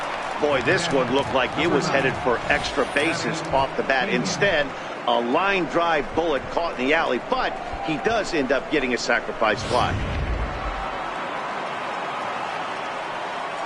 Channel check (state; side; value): identical; both; correlation 1.00